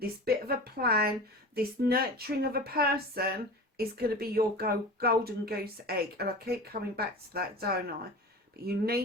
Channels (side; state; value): both; normal; correlation 0.33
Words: this bit of a plan, this nurturing of a person, is going to be your golden goose egg. And I keep coming back to that, don't I? But you